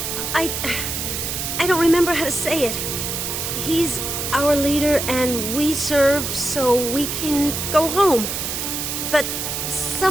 I don't remember how to say it. He's our leader and we serve so we can go home. But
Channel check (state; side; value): noise; right; hiss, 3 dB below the sound